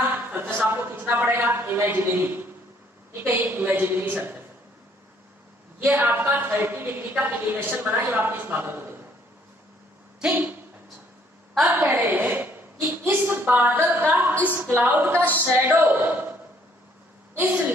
सरफेस आपको खींचना पड़ेगा इमेजिनरी, ठीक है, ये इमेजिनरी सरफेस, ये आपका 30 डिग्री का एलिवेशन बना जब आपने इस बादल को देखा, ठीक। अच्छा, अब कह रहे हैं कि इस बादल का, इस क्लाउड का शैडो इस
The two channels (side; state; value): both; normal; correlation 0.64